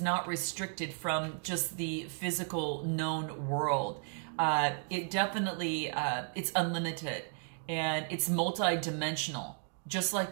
restricted from just the physical known world. It definitely, it's unlimited. And it's multi-dimensional, just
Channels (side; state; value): left; silent; 55 dB below the other